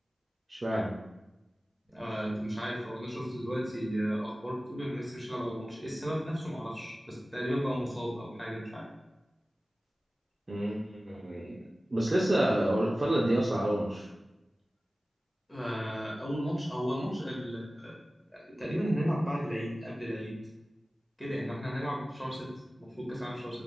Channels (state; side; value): normal; both; correlation 0.97